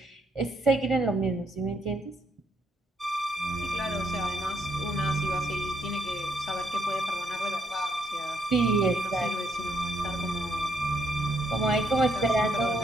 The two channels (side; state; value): both; normal; correlation 0.74